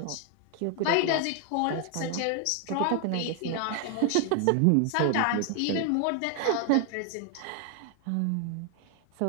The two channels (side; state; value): both; different; correlation 0.00